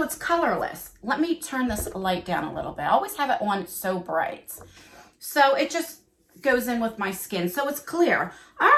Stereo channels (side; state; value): both; identical; correlation 1.00